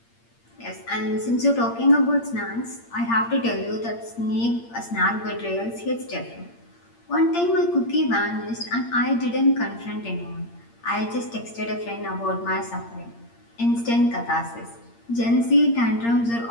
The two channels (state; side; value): late; right; 8.7 ms